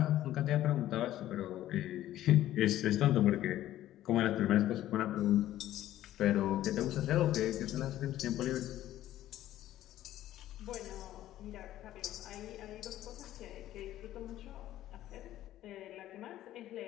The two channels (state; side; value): quieter; right; 13.5 dB